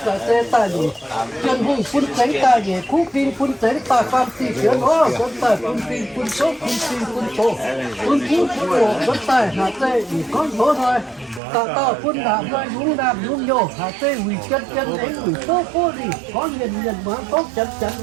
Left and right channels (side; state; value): left; drops out; at 11.4 s